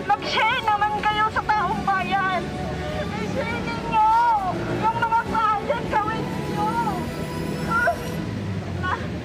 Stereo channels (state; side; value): identical; both; correlation 1.00